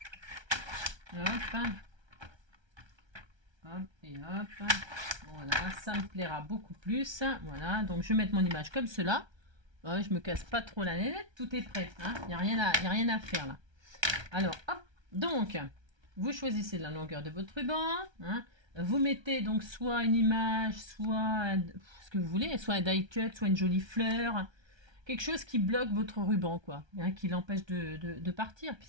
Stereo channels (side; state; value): left; late; 1.3 ms